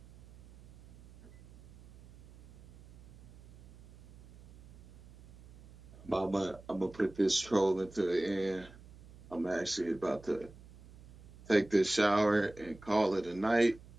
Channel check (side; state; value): right; noise; hum, 21 dB below the sound